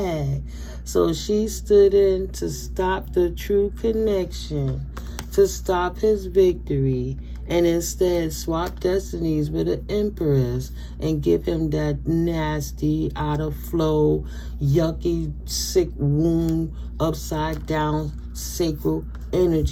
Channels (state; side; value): identical; both; correlation 1.00